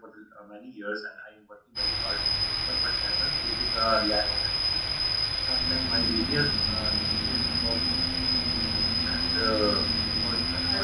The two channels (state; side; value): identical; both; correlation 1.00